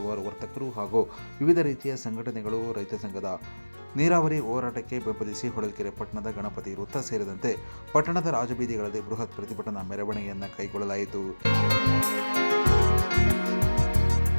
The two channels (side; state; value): both; inverted; correlation -1.00